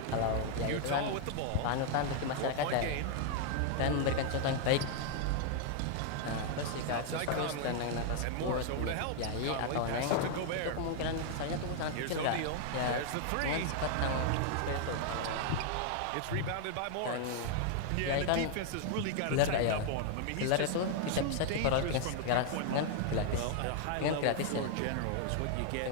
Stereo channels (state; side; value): different; both; correlation 0.00